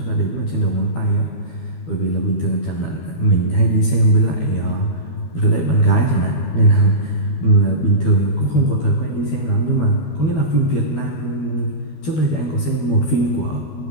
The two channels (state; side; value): late; right; 12 ms